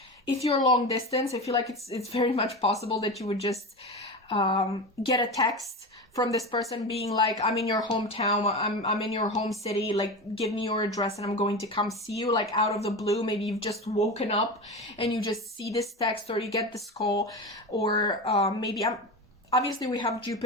if you're long distance, I feel like it's very much possible that you would just get a text from this person being like, I'm in your hometown, I'm in your home city, like give me your address and I'm going to come see you, like out of the blue. Maybe you've just woken up and you just see this text, or you get this call, or maybe obviously we have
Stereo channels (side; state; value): both; normal; correlation 0.25